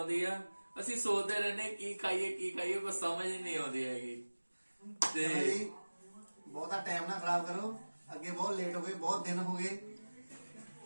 ਆ। ਅਸੀਂ ਸੋਚਦੇ ਰਹਿੰਦੇ ਕੀ ਖਾਈਏ ਕੋਈ ਸਮਝ ਹੀ ਨਹੀਂ ਆਉਂਦੀ ਹੈਗੀ। ਤੇ ਬਹੁਤਾ ਟਾਈਮ ਨਾ ਖਰਾਬ ਕਰੋ, ਅੱਗੇ ਬਹੁਤ ਲੇਟ ਹੋ ਗਏ, ਬਹੁਤ ਦਿਨ ਹੋ ਗਏ,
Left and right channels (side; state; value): both; inverted; correlation -1.00